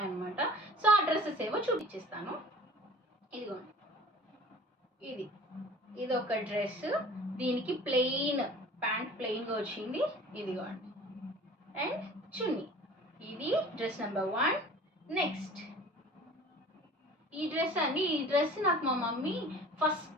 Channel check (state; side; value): normal; both; correlation 0.45